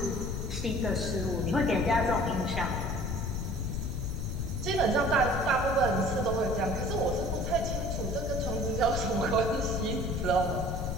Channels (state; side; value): noise; left; rumble, 3 dB below the sound